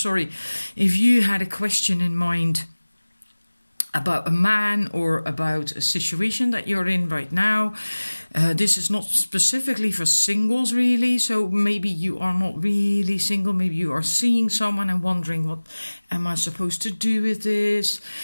you had a question in mind about a man or about a situation that you're in right now, this is not specifically for singles really, so maybe you are not really single, maybe you are seeing someone and wondering, what am I supposed to do with this?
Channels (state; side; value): inverted; both; correlation -1.00